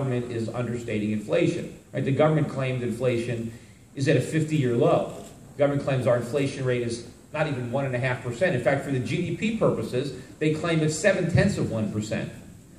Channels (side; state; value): both; identical; correlation 1.00